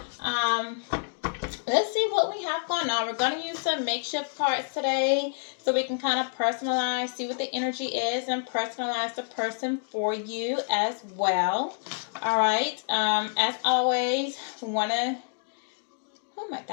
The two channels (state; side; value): silent; right; digital silence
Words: let's see what we have going on. We're going to use some makeshift cards today so we can kind of personalize, see what the energy is, and personalize the person for you as well. All right. As always, want to. Oh my